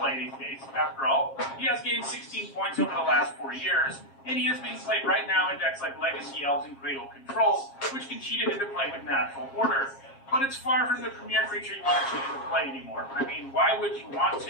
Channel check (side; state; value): right; late; 7.4 ms